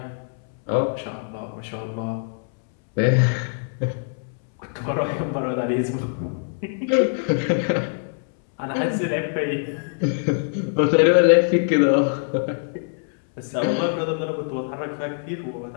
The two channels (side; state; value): right; silent; 63 dB below the other